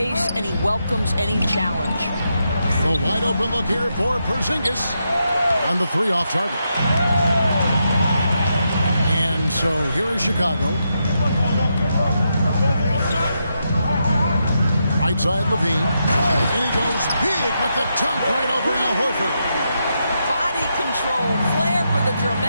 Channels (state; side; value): inverted; both; correlation -0.83